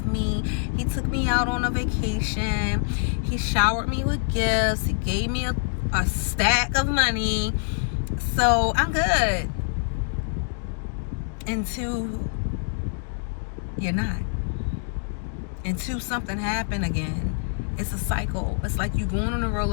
me. He took me out on a vacation. He showered me with gifts. He gave me a stack of money. So I'm good. Until you're not. Until something happened again. It's a cycle. It's like you going on a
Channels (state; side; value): silent; right; digital silence